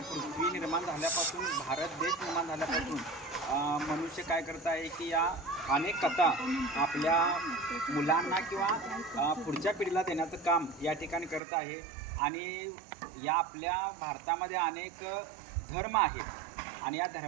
पृथ्वी निर्माण झाल्यापासून भारत देश निर्माण झाल्यापासून मनुष्य काय करत आहे की या अनेक कथा आपल्या मुलांना किंवा पुढच्या पिढीला देण्याचं काम या ठिकाणी करत आहे. आणि या आपल्या भारतामध्ये अनेक धर्म आहेत आणि या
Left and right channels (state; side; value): drops out; left; at 11.4 s